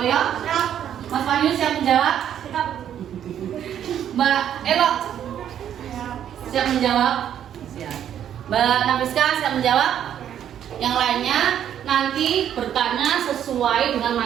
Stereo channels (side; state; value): left; quieter; 9.9 dB